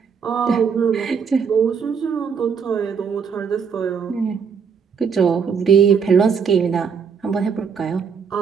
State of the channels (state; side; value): quieter; left; 6.3 dB